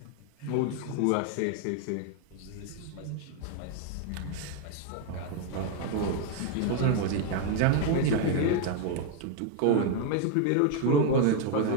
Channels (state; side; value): different; both; correlation 0.01